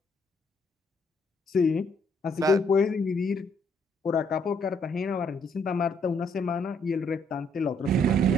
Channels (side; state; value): both; normal; correlation 0.69